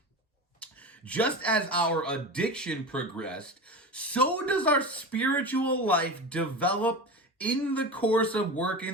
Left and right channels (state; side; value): normal; both; correlation 0.26